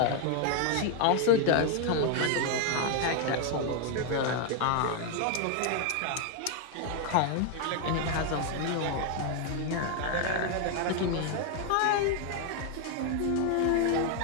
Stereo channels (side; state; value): both; different; correlation 0.01